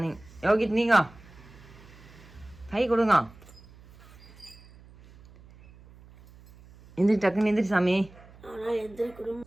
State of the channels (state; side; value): noise; right; hum, 23 dB below the sound